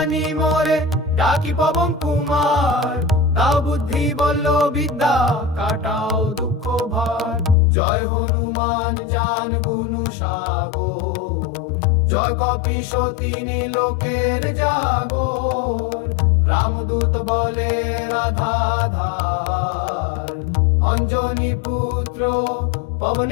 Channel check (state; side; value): drops out; right; at 7.6 s